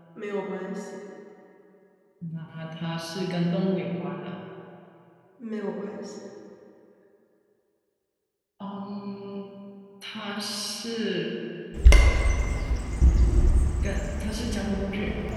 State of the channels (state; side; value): identical; both; correlation 1.00